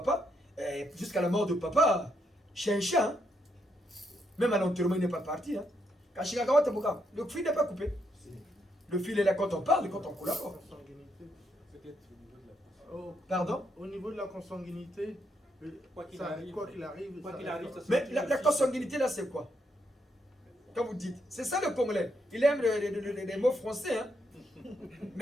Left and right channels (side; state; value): both; normal; correlation 0.78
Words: jusqu'à la mort de papa, chien. Hein? Même à l'enterrement, il n'est pas parti. Hein? Le fil n'est pas coupé. Le fil est là quand on parle et quand on collabore. Pardon? Au niveau de la consanguinité, quoi qu'il arrive. Mais la consanguinité là, c'est quoi? Quand vous dites, c'est ça le Congolais. Il aime les mots français. Hein?